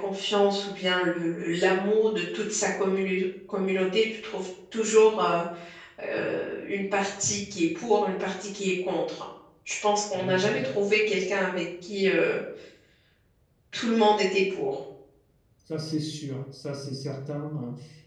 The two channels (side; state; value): both; identical; correlation 1.00